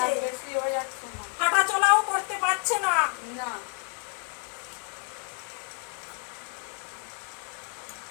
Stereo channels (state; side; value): quieter; right; 33.6 dB